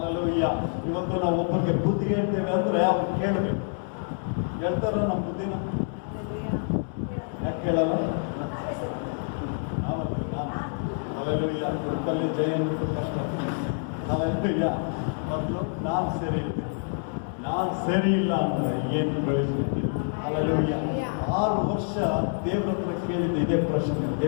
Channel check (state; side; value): silent; right; 60 dB below the other